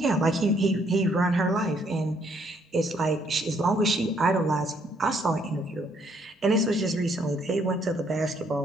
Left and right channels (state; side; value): normal; both; correlation 0.69